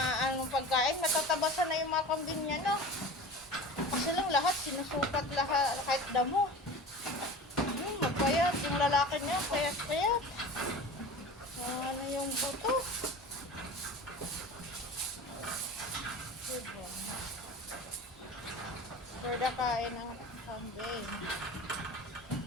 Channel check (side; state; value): both; normal; correlation 0.36